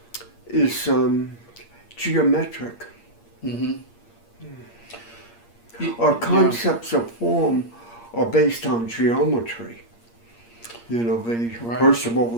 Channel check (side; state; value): right; late; 8.6 ms